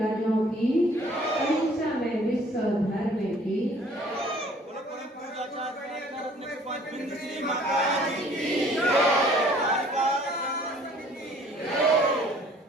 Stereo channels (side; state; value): both; normal; correlation 0.55